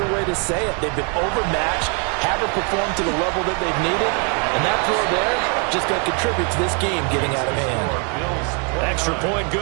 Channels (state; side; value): quieter; left; 36.4 dB